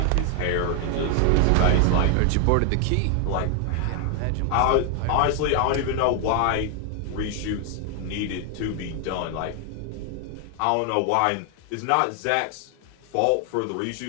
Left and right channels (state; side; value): different; both; correlation 0.00